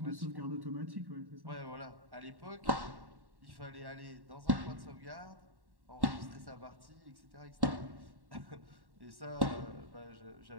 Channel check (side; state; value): left; late; 1.1 ms